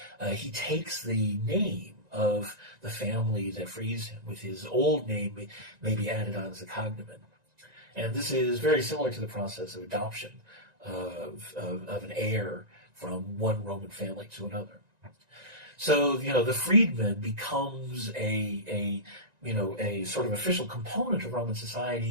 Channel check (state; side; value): late; left; 1.9 ms